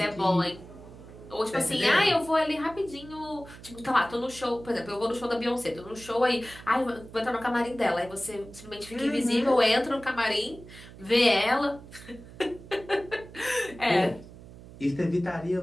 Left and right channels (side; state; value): right; noise; hum, 18 dB below the sound